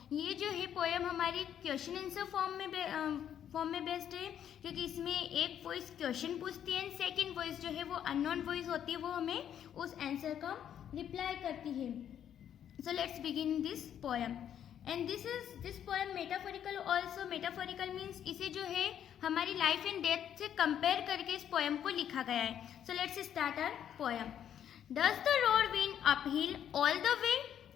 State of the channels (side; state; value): right; quieter; 9.7 dB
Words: ये जो है poem हमारी question answer form में बेस्ड है क्योंकि इसमें एक वॉइस क्वेश्चन पूछती है एंड सेकंड वॉइस जो है वो अननोन वॉइस होती है, वो हमें उस आंसर का रिप्लाई करती है. So let's begin this poem and this poem metaphorical also. Metaphorical means इसे जो है हमारी लाइफ एंड डेथ से कंपेयर करके इस पोएम को लिखा गया है. So let's start our poem. Does the road wind uphill all the way?